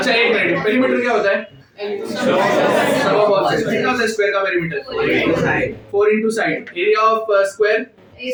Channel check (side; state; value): both; identical; correlation 1.00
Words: एक मिनट, पेरीमीटर क्या होता है? सम ऑफ ऑल साइड्स। कितना होता है स्क्वायर का perimeter? 4 into side. Area of square